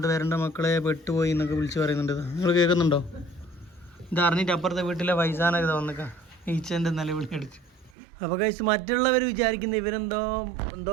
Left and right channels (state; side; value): drops out; left; at 7.9 s